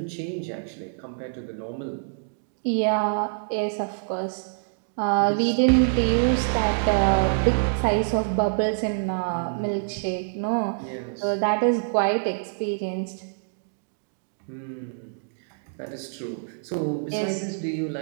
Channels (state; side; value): silent; left; digital silence